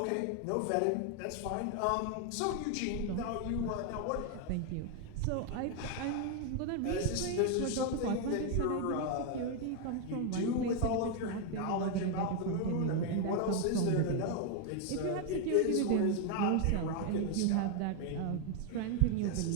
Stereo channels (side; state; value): both; different; correlation 0.01